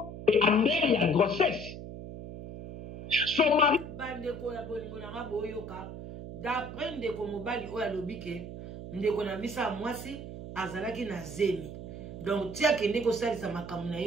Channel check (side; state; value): right; noise; hum, 10 dB below the sound